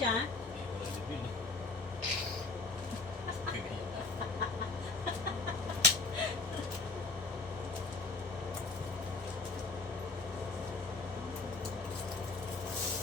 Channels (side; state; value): right; quieter; 3.8 dB